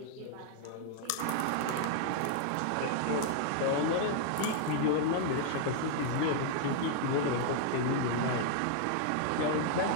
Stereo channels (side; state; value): both; different; correlation 0.00